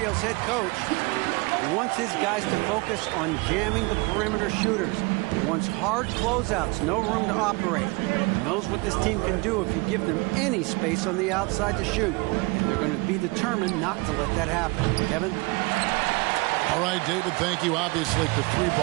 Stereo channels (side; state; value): left; quieter; 26.5 dB